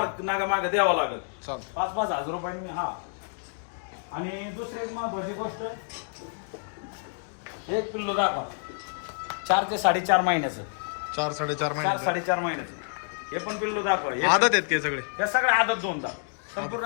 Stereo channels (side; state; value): right; silent; digital silence